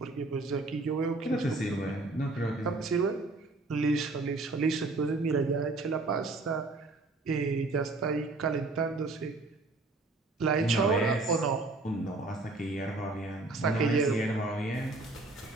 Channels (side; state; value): left; quieter; 3.3 dB